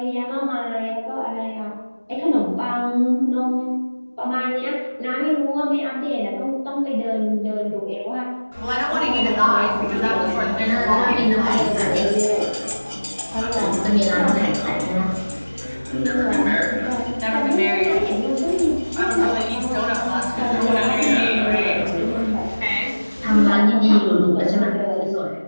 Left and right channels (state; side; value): inverted; both; correlation -1.00